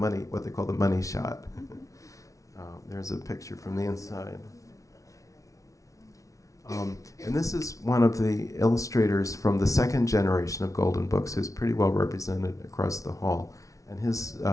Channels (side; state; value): right; late; 0.16 ms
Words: what they call the money shot. There's a picture from the inside. And this is one of the illustrators from the second generation of Golden Books, who's pretty well represented across the hall. And his